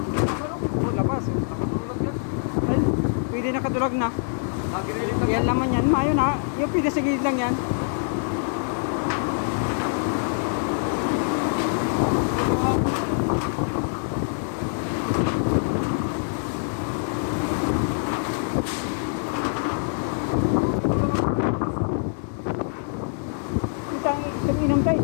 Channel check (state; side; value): silent; right; digital silence